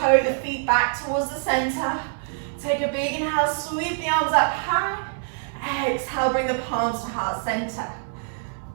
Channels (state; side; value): silent; left; 60 dB below the other